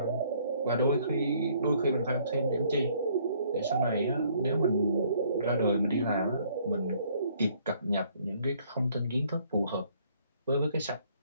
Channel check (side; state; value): both; inverted; correlation -0.63